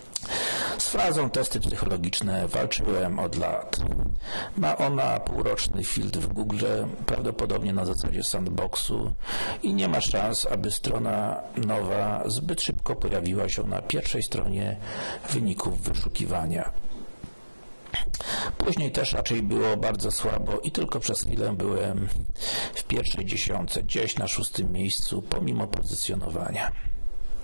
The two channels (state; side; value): inverted; both; correlation -1.00